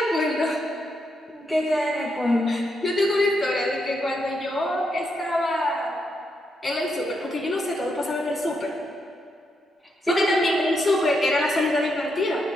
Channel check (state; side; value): normal; both; correlation 0.81